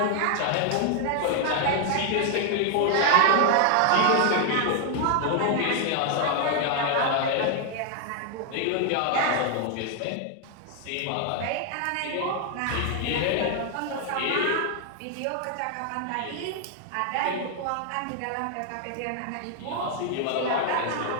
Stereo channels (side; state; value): both; different; correlation 0.00